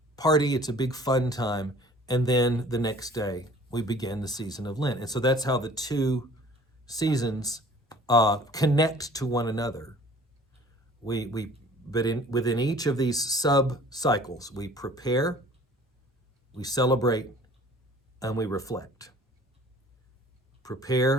party, it's a big fun time, and then the next day we begin the season of Lent, and so that's how the two seasons connect to one another. Within each of these sub-cycles, we prepare, we celebrate, and we reflect.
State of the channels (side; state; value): both; normal; correlation 0.50